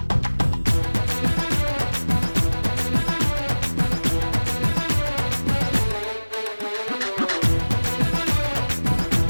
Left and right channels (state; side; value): inverted; both; correlation -1.00